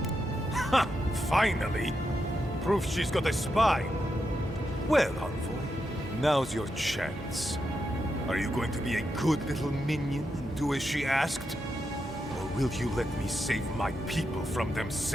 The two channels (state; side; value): normal; both; correlation 0.85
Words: Ha! Finally! Proof she's got a spine. Well, envoy, now's your chance. Are you going to be a good little minion and do as she asked? Or will you let me save my people from